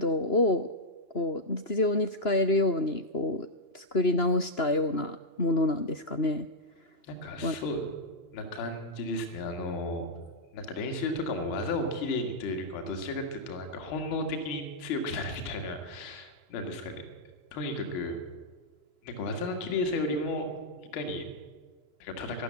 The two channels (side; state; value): right; late; 2.9 ms